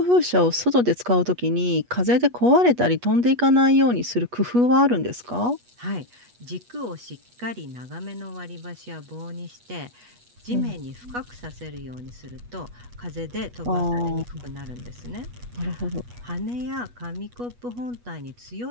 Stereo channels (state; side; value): late; left; 8.3 ms